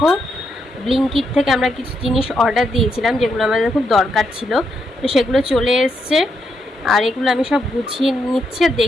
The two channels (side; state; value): both; normal; correlation 0.80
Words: ব্লিঙ্কিট থেকে আমরা কিছু জিনিস অর্ডার দিয়েছিলাম যেগুলো আমাদের খুব দরকার ছিল। তো সেগুলো চলে এসছে, আর এগুলো আমি সব গুছিয়ে নিচ্ছি আর